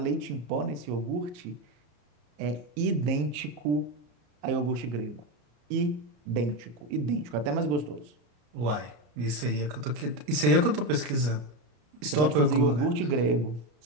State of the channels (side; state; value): left; late; 33 ms